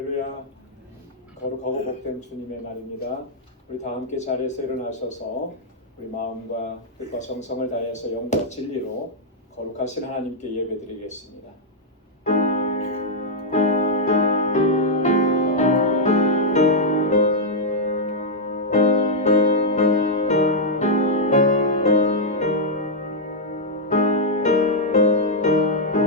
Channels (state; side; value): normal; both; correlation -0.03